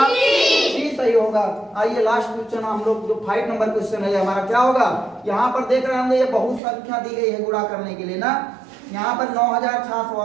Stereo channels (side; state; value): left; drops out; at 6.6 s